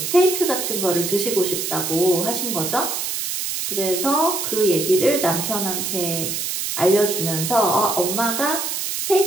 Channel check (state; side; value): noise; right; hiss, 3 dB below the sound